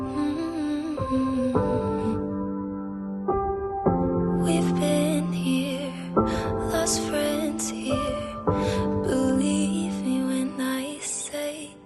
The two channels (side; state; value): both; identical; correlation 1.00